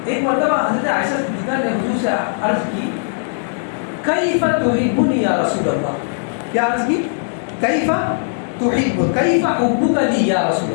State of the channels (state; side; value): silent; right; digital silence